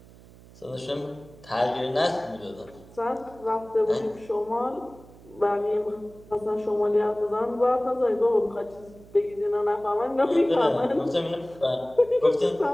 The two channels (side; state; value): right; noise; hum, 22 dB below the sound